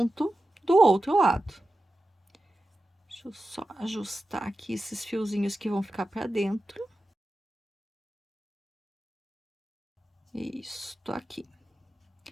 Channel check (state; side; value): normal; both; correlation 0.93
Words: do outro lado. Deixa eu só ajustar aqui esses fiozinhos que vão ficar para dentro. Isso, tô aqui.